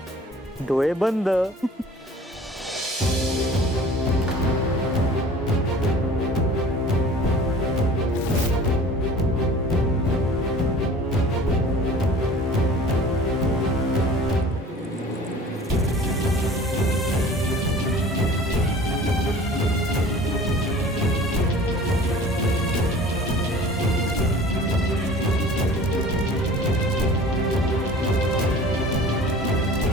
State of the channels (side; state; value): both; normal; correlation 0.45